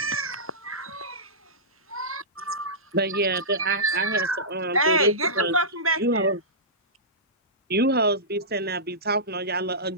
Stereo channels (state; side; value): normal; both; correlation -0.17